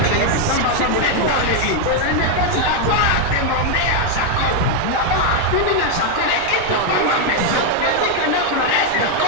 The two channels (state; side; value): different; both; correlation 0.01